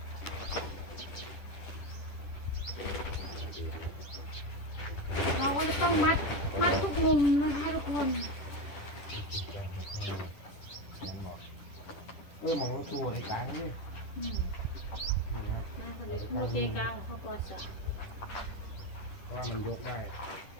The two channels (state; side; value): late; right; 10 ms